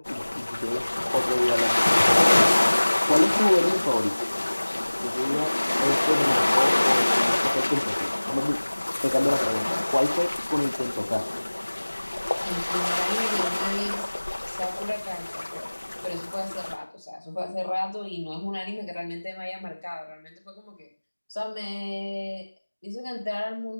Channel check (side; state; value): both; inverted; correlation -1.00